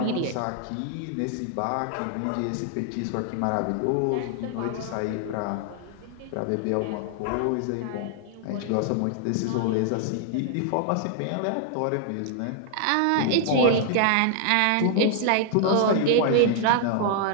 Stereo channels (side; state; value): both; different; correlation -0.01